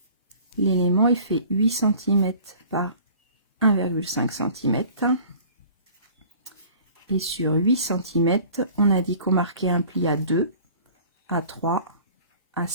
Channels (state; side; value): inverted; both; correlation -0.47